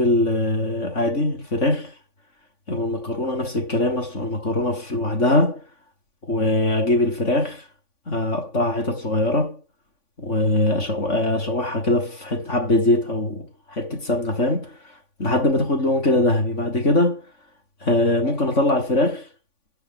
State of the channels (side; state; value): right; late; 3.5 ms